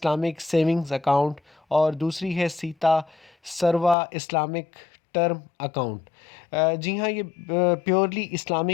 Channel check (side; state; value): right; drops out; at 4.0 s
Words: सेविंग्स अकाउंट और दूसरी है सीता सरवा इस्लामिक टर्म अकाउंट। जी हाँ, ये प्योरली